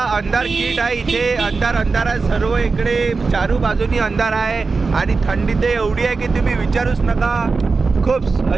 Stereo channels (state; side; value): quieter; left; 4.3 dB